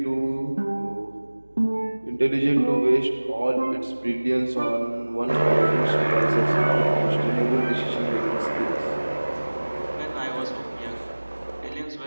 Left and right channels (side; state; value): both; inverted; correlation -1.00